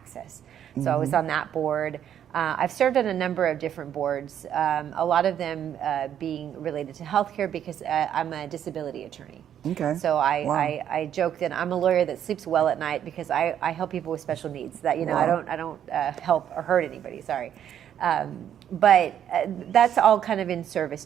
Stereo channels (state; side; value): quieter; left; 9.8 dB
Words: So I was on that board. I've served on a number of different boards, a lot of them being related to healthcare because I'm a disability attorney. Okay. So I joke that I'm a lawyer that sleeps well at night because I help people with special needs. That I don't help or hurt anybody. Sorry. But that's all kind of in service